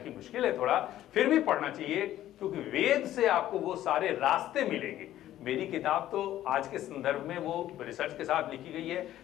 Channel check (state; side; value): quieter; right; 13.1 dB